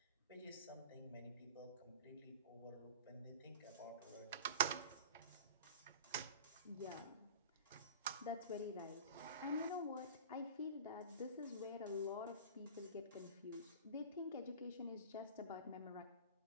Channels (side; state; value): both; inverted; correlation -0.37